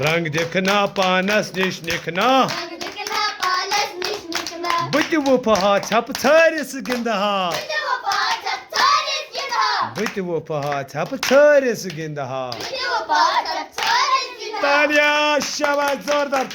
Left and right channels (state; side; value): identical; both; correlation 1.00